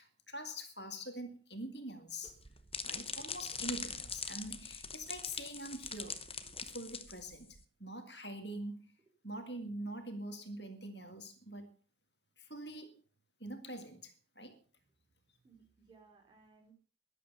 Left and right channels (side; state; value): both; normal; correlation 0.24